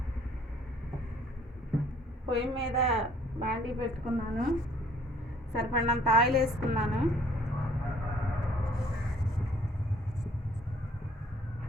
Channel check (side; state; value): both; normal; correlation 0.59